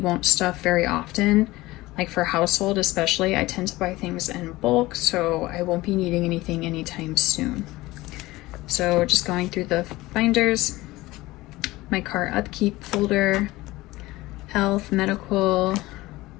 stuff very often. Like for household especially, I tend to buy things in bulk, so I won't be needing anything anytime soon. So just going through the binders, my car upkeep folder, health, medical,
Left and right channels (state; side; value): quieter; right; 19.1 dB